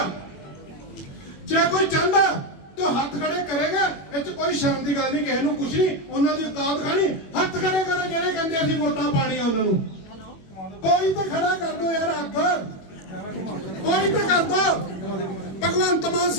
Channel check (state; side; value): late; right; 21 ms